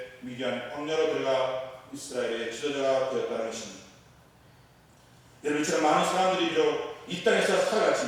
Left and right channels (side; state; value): both; identical; correlation 1.00